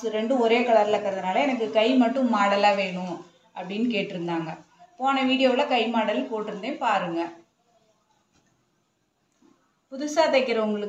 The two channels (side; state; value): both; identical; correlation 1.00